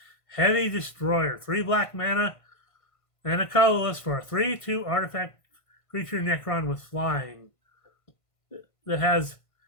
Heavy Destroyer. 3 black mana and a colorless for a 3/2 artifact creature Necron with flying. That has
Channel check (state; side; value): late; right; 1.5 ms